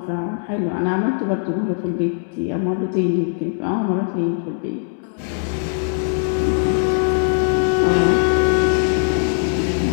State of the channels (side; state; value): right; silent; digital silence